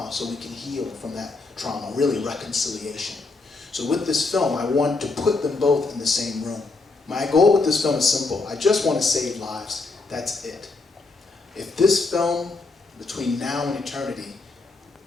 so we can heal from that trauma, really reconciliation. So with this film, I want to put them both in the same room. My goal with this film is simple. I just want to save lives. That's it. If this film, between now and eternity,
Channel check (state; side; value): quieter; right; 3.7 dB